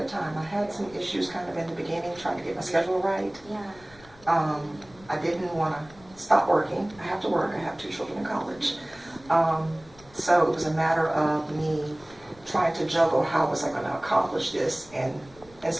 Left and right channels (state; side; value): noise; left; rumble, 24 dB below the sound